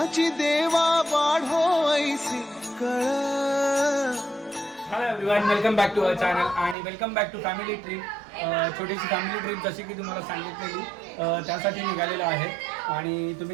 देवा वाढो ऐसी कळ. Hello everyone, welcome back to our channel आणि welcome back to family trip. छोटीशी फॅमिली ट्रिप जशी की तुम्हाला सांगितलेली त्यासाठी निघालेलो आहे. आणि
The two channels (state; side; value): drops out; left; at 6.8 s